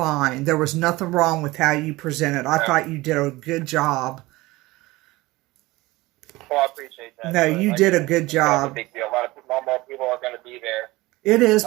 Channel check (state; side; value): quieter; left; 20.2 dB